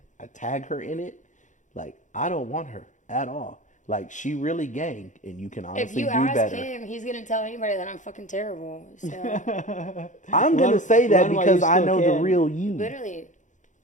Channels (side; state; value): right; late; 0.36 ms